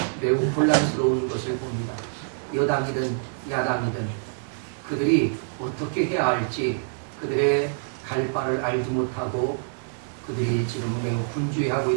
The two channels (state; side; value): silent; left; digital silence